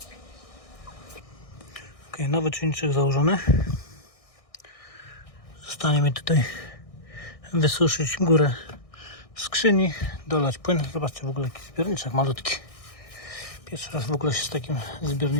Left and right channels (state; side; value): late; right; 1.6 ms